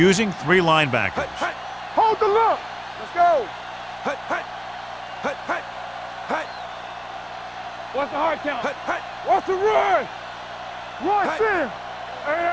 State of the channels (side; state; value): both; identical; correlation 1.00